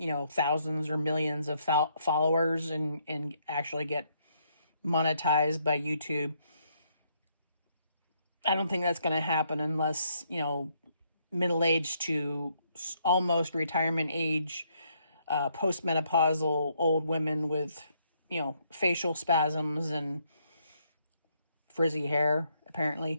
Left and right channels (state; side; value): inverted; both; correlation -0.72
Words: thousands or millions of followers and actually get monetized by YouTube. I don't think that's going to happen unless, middle-aged to almost retirement age, postmenopausal old women with, facial spasms and frizzy hair,